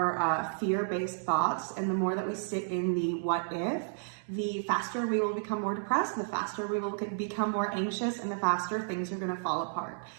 fear-based thoughts, and the more that we sit in the what if, the faster we will become more depressed, the faster we will become more anxious, and the faster things are going to fall apart.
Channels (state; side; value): silent; left; 55 dB below the other